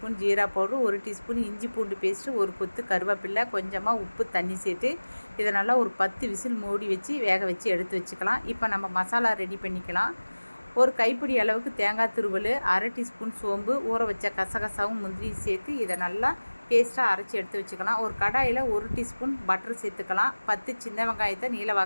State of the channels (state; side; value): inverted; both; correlation -1.00